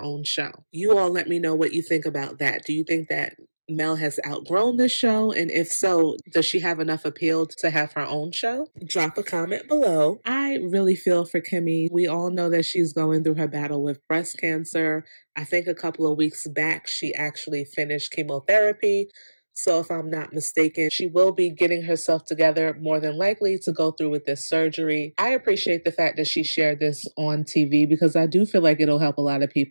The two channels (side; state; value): both; inverted; correlation -1.00